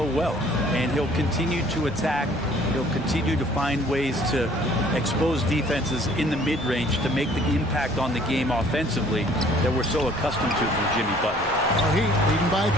well, and he'll continue to attack. He'll continue to find ways to expose defenses in the mid-range to make the impact on the game offensively that we're so accustomed to from Jimmy Butler. Heat leading by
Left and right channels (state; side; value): normal; both; correlation 0.56